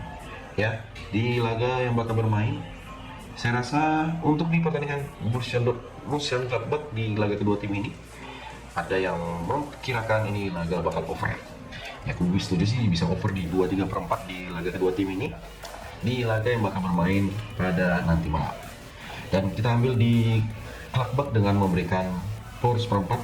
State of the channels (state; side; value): identical; both; correlation 1.00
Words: ya. Di laga yang bakal bermain, saya rasa untuk di pertandingan Borussia Gladbach di laga kedua tim ini, ada yang memperkirakan ini laga bakal over. Ya, aku setuju sih bisa over di 2/3/4 di laga kedua tim ini di laga yang bakal bermain pada nanti malam. Dan kita ambil di Gladbach dengan memberikan power